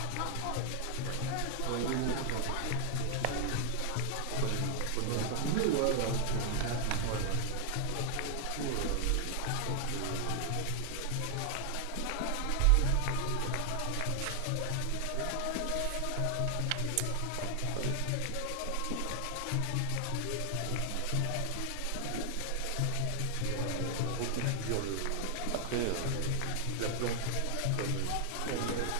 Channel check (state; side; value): different; both; correlation 0.00